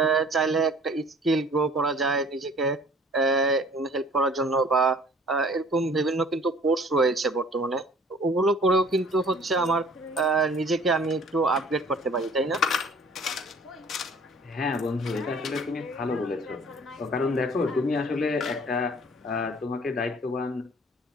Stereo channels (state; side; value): normal; both; correlation 0.52